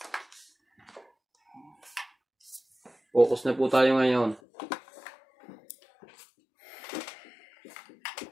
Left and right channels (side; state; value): right; drops out; at 4.4 s